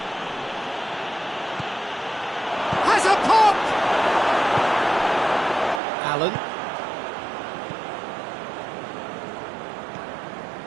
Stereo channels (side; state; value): left; drops out; at 5.8 s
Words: Has a pop! Allen.